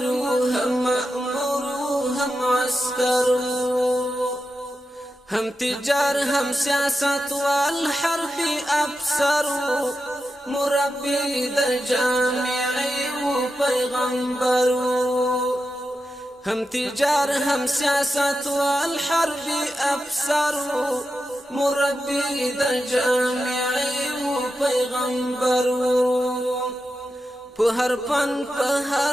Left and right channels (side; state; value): both; normal; correlation 0.89